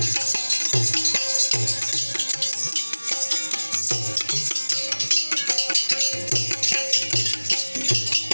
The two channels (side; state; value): both; inverted; correlation -1.00